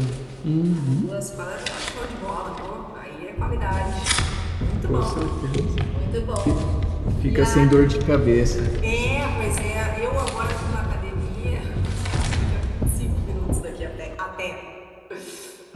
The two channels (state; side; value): identical; both; correlation 1.00